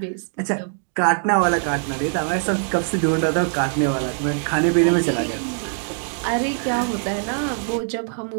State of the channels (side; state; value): left; silent; digital silence